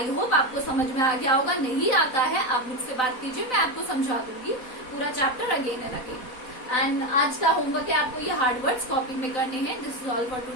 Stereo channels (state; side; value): late; right; 4.0 ms